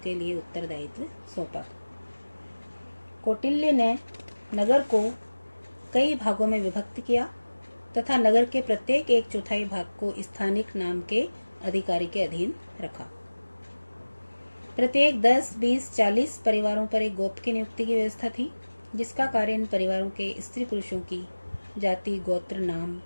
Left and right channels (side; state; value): both; inverted; correlation -1.00